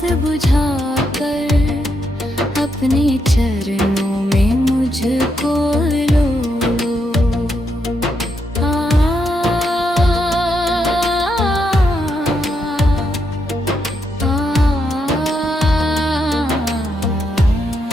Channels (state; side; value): normal; both; correlation 0.80